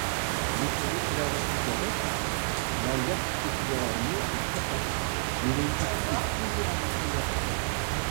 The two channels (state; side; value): silent; left; 58 dB below the other